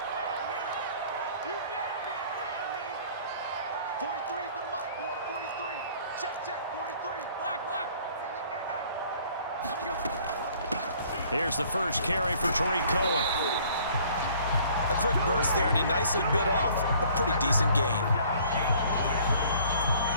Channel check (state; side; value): inverted; both; correlation -0.56